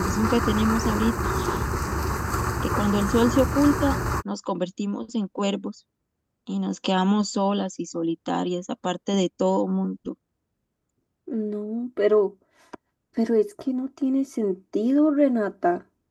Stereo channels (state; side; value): identical; both; correlation 1.00